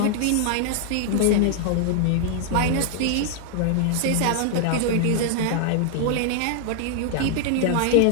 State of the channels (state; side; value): different; both; correlation 0.00